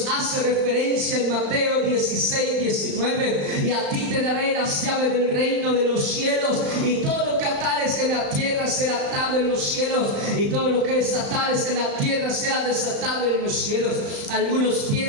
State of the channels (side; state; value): left; late; 35 ms